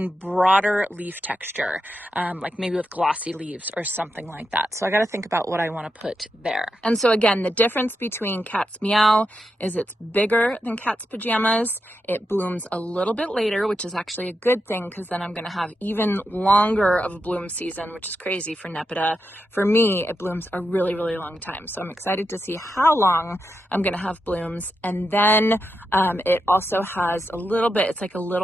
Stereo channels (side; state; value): both; normal; correlation 0.86